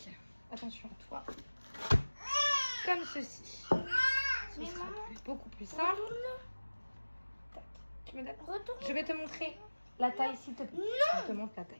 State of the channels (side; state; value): both; inverted; correlation -1.00